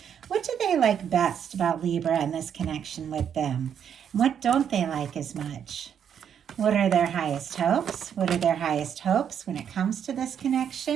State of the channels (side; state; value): left; quieter; 8.4 dB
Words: What do they like best about Libra and this connection with them? What don't they like as much? What are their highest hopes? What are their highest hopes when it comes to this